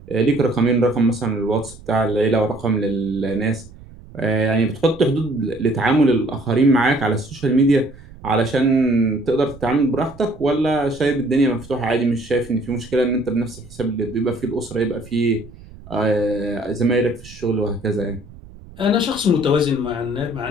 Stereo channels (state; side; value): noise; right; rumble, 19 dB below the sound